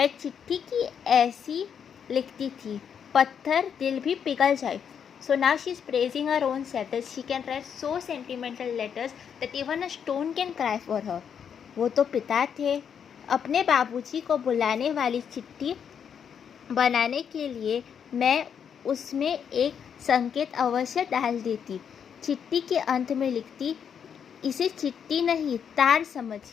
चिट्ठी की ऐसी लिखती थी, पत्थर दिल भी पिघल जाए. So now she is praising her own self that she can write so sentimental letters that even a stone can cry for her. वो तो पिता थे. अपने बाबूजी को बुलाने वाली चिट्ठी बनाने के लिए मैं उसमें एक संकेत अवश्य डाल देती. चिट्ठी के अंत में लिखती, इसे चिट्ठी नहीं तार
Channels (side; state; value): right; quieter; 7.7 dB